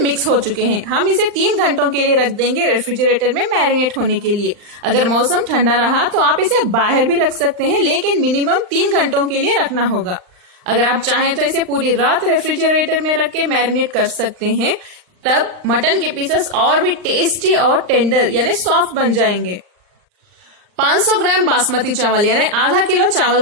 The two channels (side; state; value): left; late; 39 ms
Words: हो चुके हैं। हम इसे 3 घंटों के लिए रख देंगे रेफ्रिजरेटर में मैरिनेट होने के लिए। अगर मौसम ठंडा रहा तो आप इसे बाहर भी रख सकते हैं, लेकिन मिनिमम 3 घंटों के लिए रखना होगा। अगर आप चाहें तो इसे पूरी रात रेफ्रिजरेटर में रख के मैरिनेट कर सकते हैं, तब मटन के पीसेस और भी टेस्टी और टेंडर यानी सॉफ्ट बन जाएंगे। 500 ग्राम बासमती चावल यानी आधा किलो चावल